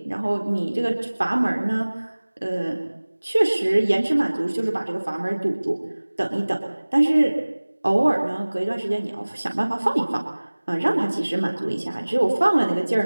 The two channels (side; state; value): both; inverted; correlation -1.00